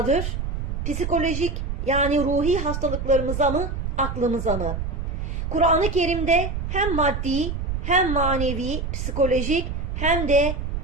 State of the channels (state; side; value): noise; right; rumble, 3 dB below the sound